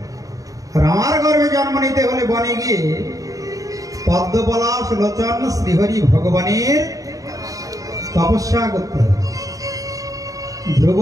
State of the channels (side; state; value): left; late; 0.17 ms